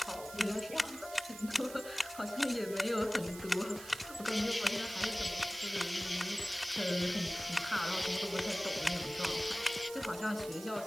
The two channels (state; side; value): noise; right; hiss, 14 dB below the sound